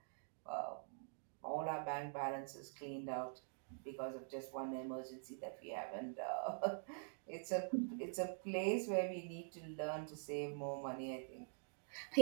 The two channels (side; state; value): left; silent; digital silence